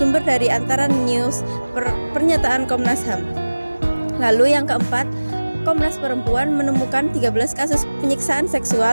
dari Antara News, pernyataan Komnas HAM. Lalu yang keempat, Komnas Perempuan menemukan 13 kasus penyiksaan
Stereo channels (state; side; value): inverted; both; correlation -1.00